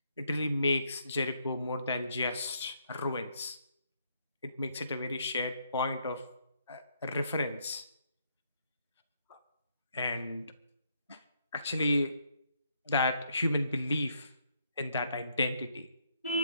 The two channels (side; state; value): both; inverted; correlation -0.73